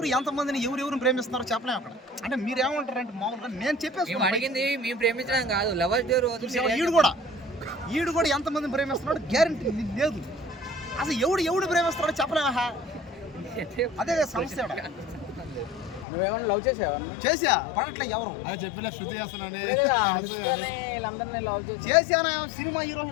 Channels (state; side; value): drops out; right; at 16.1 s